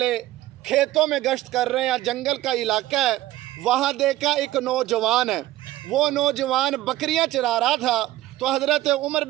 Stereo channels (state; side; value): quieter; left; 15.6 dB